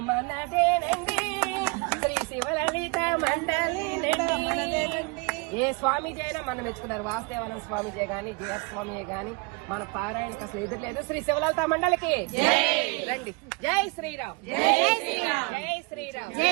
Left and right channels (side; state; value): left; quieter; 29.7 dB